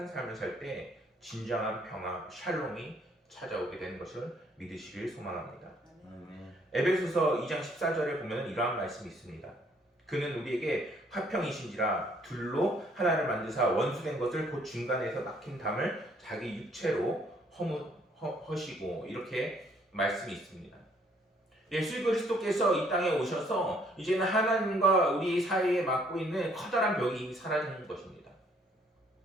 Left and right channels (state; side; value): normal; both; correlation 0.64